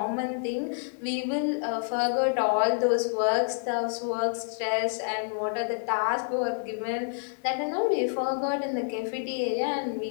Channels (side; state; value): right; silent; 59 dB below the other